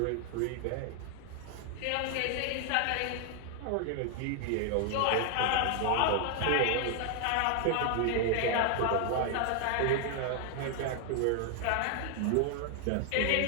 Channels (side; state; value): both; different; correlation 0.00